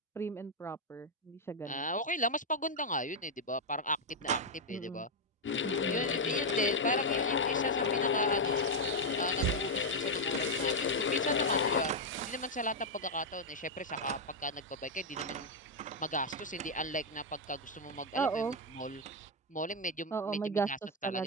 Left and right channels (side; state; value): both; normal; correlation 0.01